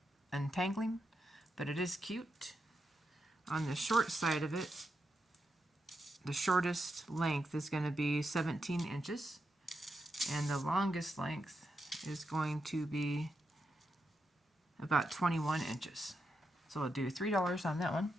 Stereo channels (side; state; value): both; normal; correlation 0.85